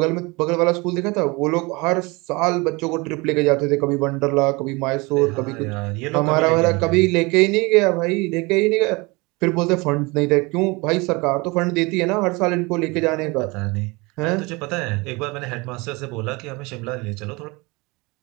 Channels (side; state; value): left; quieter; 25.6 dB